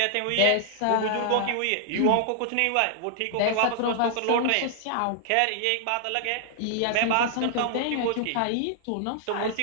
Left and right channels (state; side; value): different; both; correlation -0.01